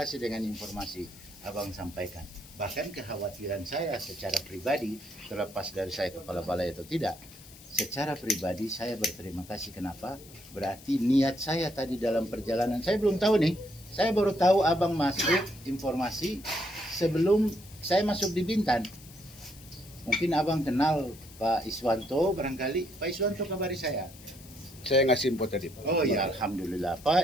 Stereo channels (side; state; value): left; noise; hiss, 20 dB below the sound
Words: dengan informasi abang sampaikan. Bahkan kekhawatiran saya secara pribadi, terlepas dari saya kepala balai atau tidak, secara pribadi saya berterima kasih. Kenapa? Berarti niat saya tadi dalam perjalanan, saya belum tahu nih, saya baru tahu abang masuk informasi sebelum saya masuk di Bintan. Mungkin abang kenal Pak Iswanto barangkali. Pak Iswanto kabari saya. Saya ngasih info tadi Pak. Oh ya, alhamdulillah.